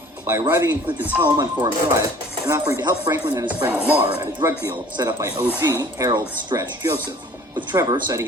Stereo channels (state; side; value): normal; both; correlation 0.50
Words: by arriving in Clinton's home on Forum Drive and offering to help Franklin and his friend Lamar at a drug deal set up by OG Harold Stretch Joseph, with Trevor citing